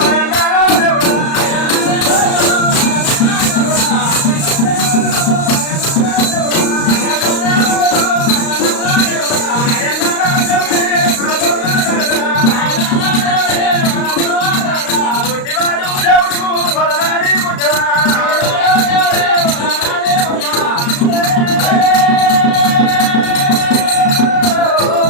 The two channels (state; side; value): late; right; 35 ms